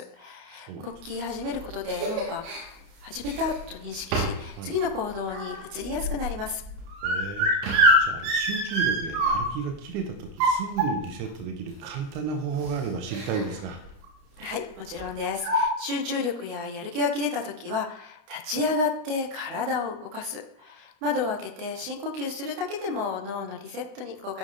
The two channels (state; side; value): late; left; 30 ms